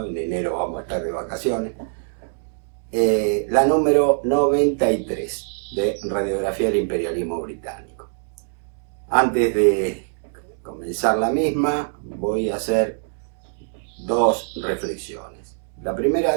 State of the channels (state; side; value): silent; left; 61 dB below the other